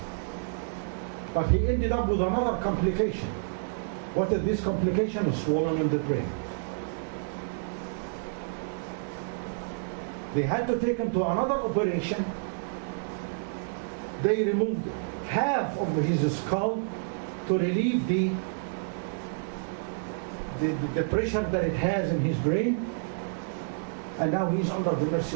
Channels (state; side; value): silent; left; 58 dB below the other